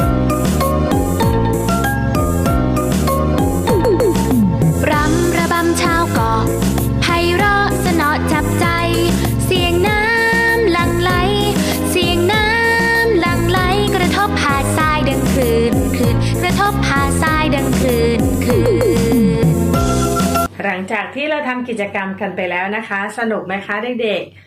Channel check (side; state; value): both; identical; correlation 1.00